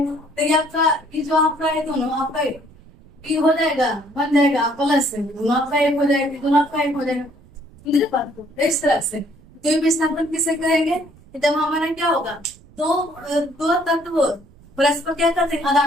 तो ये आपका ये जो आपका है दोनों आपका ये हो जाएगा, बन जाएगा प्लस से, दोनों आपका एक हो जाएगा, दोनों आपका एक हो जाएगा, मेरे बात को इस तरह से। तो विस्थापन किसे कहेंगे, जब हमारा क्या होगा, दो दो तत्व परस्पर क्या करते हैं,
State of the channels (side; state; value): right; noise; rumble, 25 dB below the sound